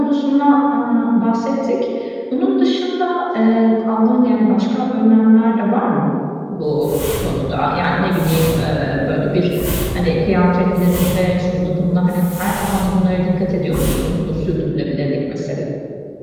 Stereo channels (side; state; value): both; identical; correlation 1.00